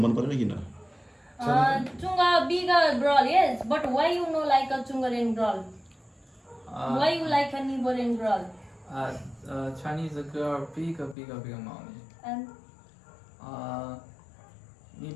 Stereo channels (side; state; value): right; drops out; at 11.2 s